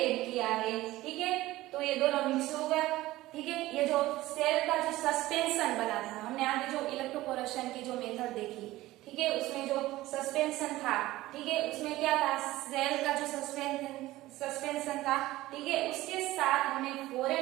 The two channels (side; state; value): left; quieter; 17.2 dB